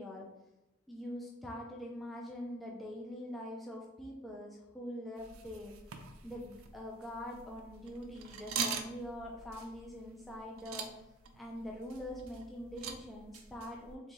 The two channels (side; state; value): both; normal; correlation 0.45